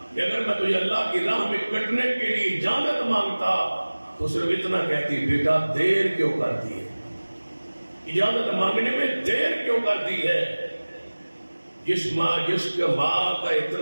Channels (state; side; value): inverted; both; correlation -1.00